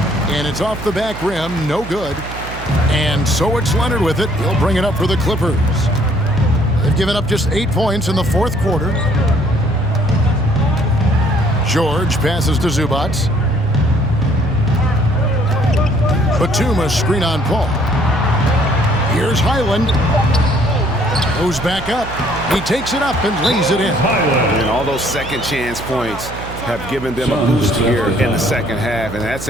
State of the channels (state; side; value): noise; right; hum, 12 dB below the sound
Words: And it's off the back rim, no good. And so it's Leonard with it. He'll bring it up for the Clippers. They've given up just 8 points in the fourth quarter. George passes to Zubats. Batum screen on Paul. Here's Highland. Goes back up. He takes it up and lays it in. And all those second chance points have given them a boost here in the second half, and that's